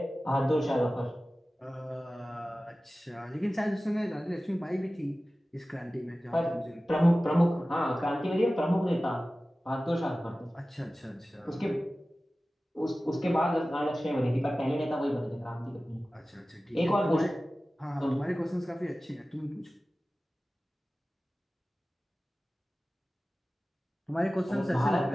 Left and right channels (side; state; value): both; normal; correlation 0.96